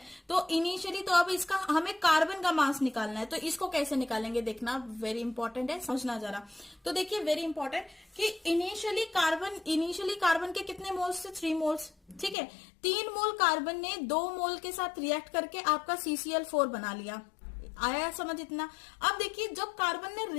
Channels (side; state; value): right; drops out; at 12.4 s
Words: तो इनिशियली तो अब इसका हमें कार्बन का मास निकालना है, तो इसको कैसे निकालेंगे देखना, वेरी इंपॉर्टेंट है, समझना जरा। तो देखिए वेरी इंपॉर्टेंट कि इनिशियली कार्बन के कितने मोल्स थे 3 मोल्स, ठीक है। 3 मोल कार्बन ने 2 मोल के साथ रिएक्ट करके आपका CCl4 बना लिया, आया समझ इतना। अब देखिए जब कार्बन ने